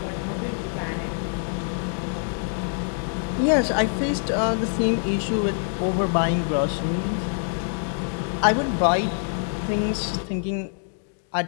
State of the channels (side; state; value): right; silent; 62 dB below the other